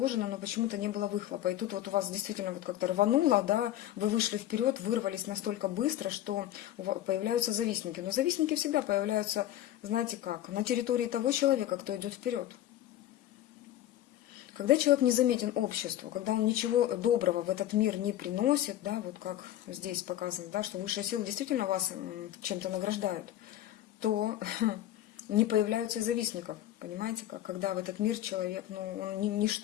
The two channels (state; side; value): quieter; right; 12.9 dB